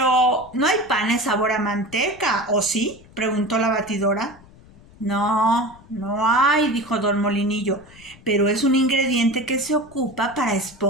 ¿no hay panes sabor a manteca, o sí?, preguntó la batidora. No hay, dijo don Molinillo, pero es un ingrediente que se ocupa para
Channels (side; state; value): left; noise; rumble, 24 dB below the sound